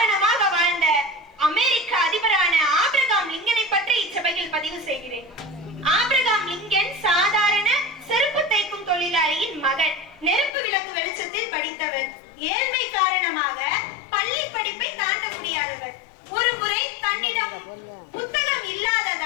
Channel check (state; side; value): drops out; right; at 10.5 s